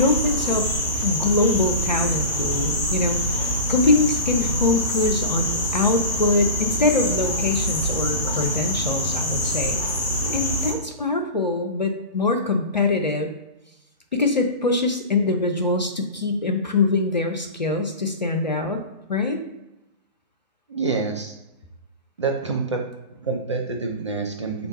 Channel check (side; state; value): both; inverted; correlation -0.30